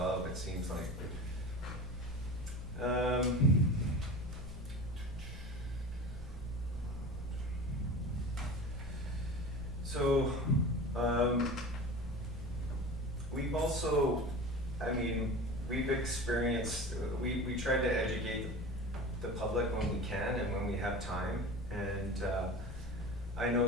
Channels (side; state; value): both; normal; correlation 0.33